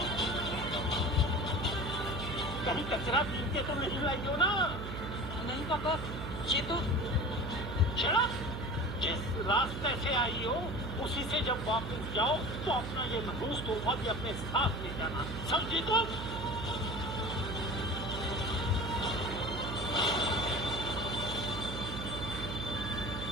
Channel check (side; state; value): right; noise; hum, 6 dB below the sound